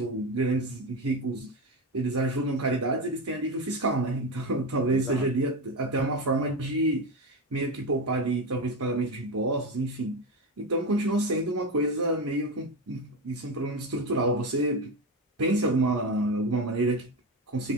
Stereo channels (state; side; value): normal; both; correlation 0.17